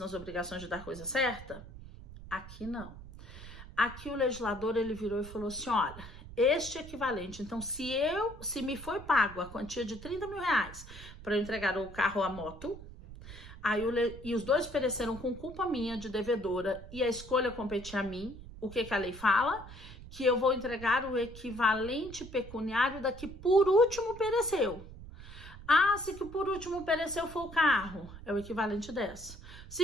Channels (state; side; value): noise; right; rumble, 15 dB below the sound